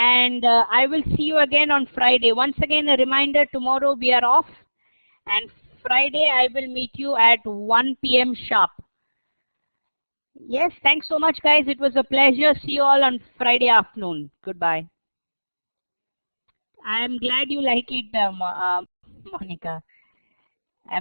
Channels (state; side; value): inverted; both; correlation -1.00